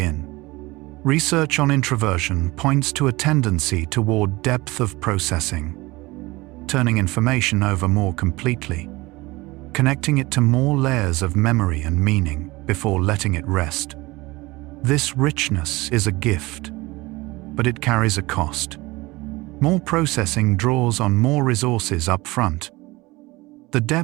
Research on introversion points to a tendency toward depth of processing, turning information over more completely, connecting it to more layers of memory and meaning before letting it rest. This richness is a gift, but it carries a cost. More processing draws on more resources up front. The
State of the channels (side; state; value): left; quieter; 21.6 dB